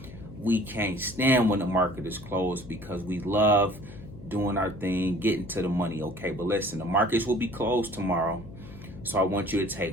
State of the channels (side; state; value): left; noise; hum, 16 dB below the sound